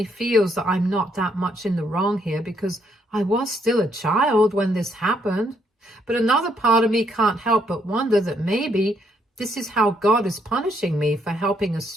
feels that I'm not that much in the wrong here because I was still a child when this happened. But another part of me can't help but wonder that maybe this is how God is punishing me for helping a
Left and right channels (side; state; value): both; normal; correlation 0.73